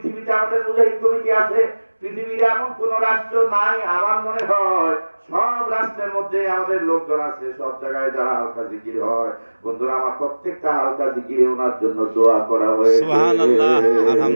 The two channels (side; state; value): both; inverted; correlation -1.00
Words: আমাদের মুজাহিদ কমিটি আছে, পৃথিবীর এমন কোন রাষ্ট্র নাই, আমার মনে হয় সব রাষ্ট্রের মধ্যে আমাদের লোকজন আছে, সব জায়গায় যারা হালকা জিকির হয়। বন্ধুরা আমার, প্রত্যেকটা হালকা জিকিরে ওনার জন্য দোয়া করা হয়েছে। সুবহানাল্লাহ,